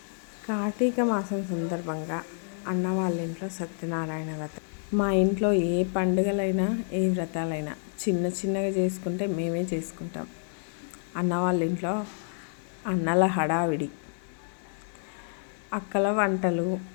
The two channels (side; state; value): right; silent; digital silence